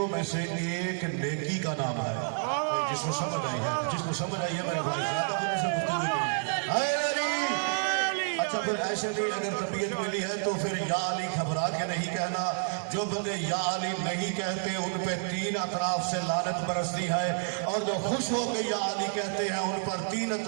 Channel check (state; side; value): silent; left; digital silence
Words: میں سے ایک نیکی کا نام ہے. جس کو سمجھ آئی ہے، جس کو سمجھ آئی ہے میرے بھائی زیادہ ہونے سے گفتگو کی. ہائے علی. اچھا پھر ایسے نہیں، اگر طبیعت ملی ہے تو پھر یا علی گھبرا کے نہیں کہنا. جو بندے یا علی نہیں کہتے ان پہ 3 اطراف سے لعنت برستی ہے، اور جو خوش ہو کے یا علی کہتے ہیں ان پر 3